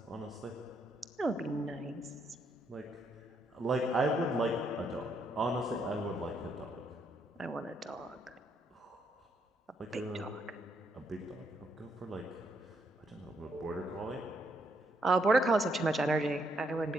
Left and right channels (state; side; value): normal; both; correlation 0.75